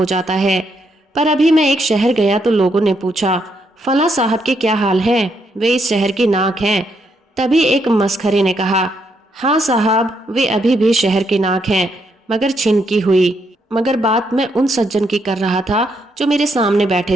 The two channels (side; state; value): both; normal; correlation 0.77